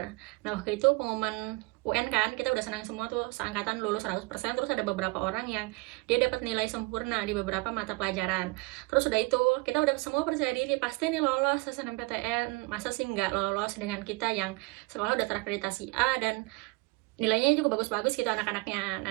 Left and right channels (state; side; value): quieter; left; 26.7 dB